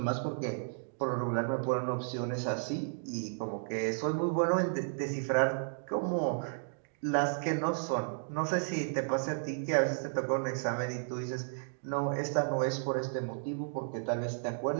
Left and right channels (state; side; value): silent; left; digital silence